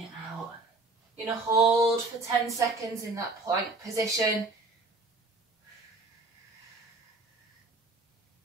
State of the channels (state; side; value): quieter; left; 3.3 dB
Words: out. You're going to hold for 10 seconds in that plank position.